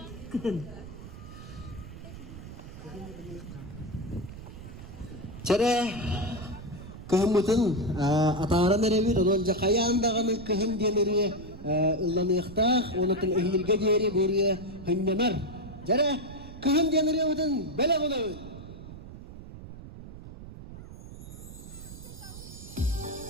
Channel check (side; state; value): right; noise; rumble, 14 dB below the sound